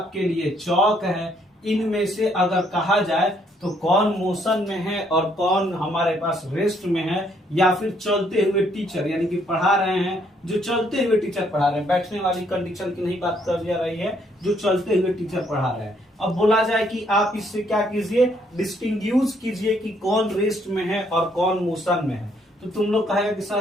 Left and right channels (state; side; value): normal; both; correlation 0.69